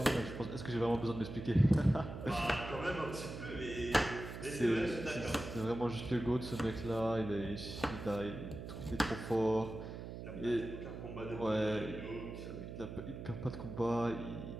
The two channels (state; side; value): noise; right; hum, 9 dB below the sound